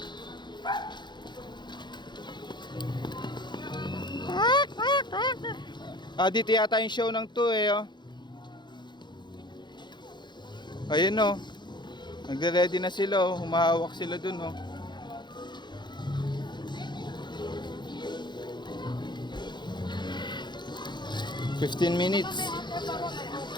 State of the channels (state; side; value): late; right; 0.22 ms